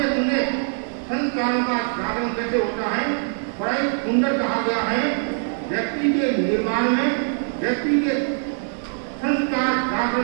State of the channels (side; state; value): left; silent; 64 dB below the other